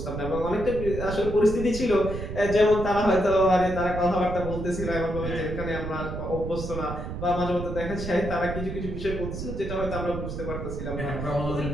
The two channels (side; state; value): right; noise; rumble, 6 dB below the sound